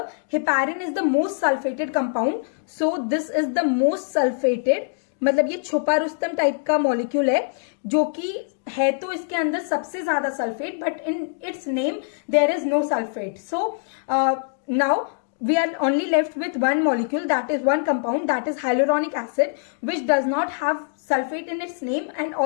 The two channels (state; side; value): silent; right; digital silence